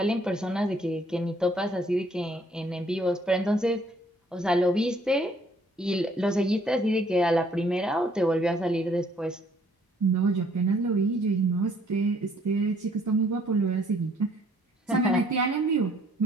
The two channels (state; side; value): normal; both; correlation 0.63